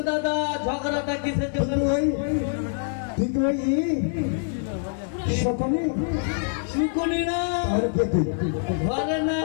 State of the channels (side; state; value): right; silent; 58 dB below the other